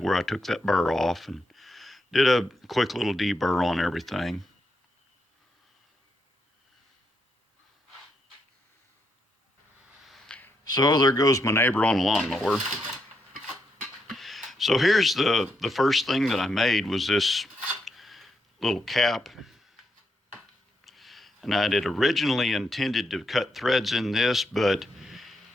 where I took that burr off and did a quick little deburr on everything. So there goes my neighbor on a lawnmower. So here's the first thing that I made was this little cap. And I had originally intended to cut threads in this, but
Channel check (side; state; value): both; normal; correlation 0.80